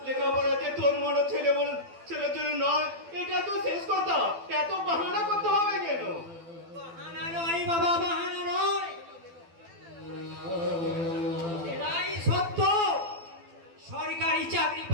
লেখাপড়াতে তোর মনে ছেলের জন্য নয়, এটা তো শেষ কথা। এত বাহানা করতে হবে কেন? বাহানা নয় বাবা, বাহানা নয়, এটাই সত্য। সরকারি চাকরি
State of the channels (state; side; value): late; left; 12 ms